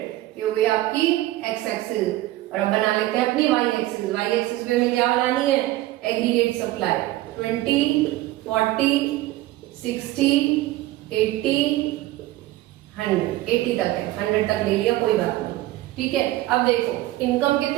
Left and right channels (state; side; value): quieter; left; 16.7 dB